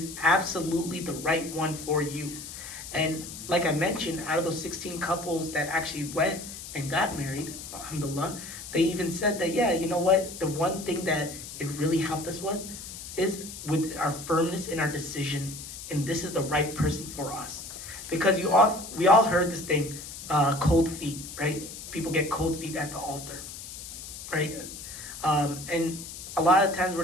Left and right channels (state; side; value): noise; left; hiss, 11 dB below the sound